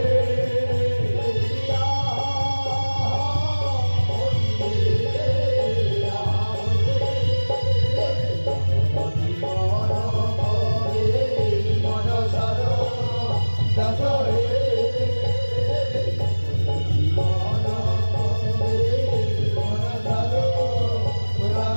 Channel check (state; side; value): inverted; both; correlation -1.00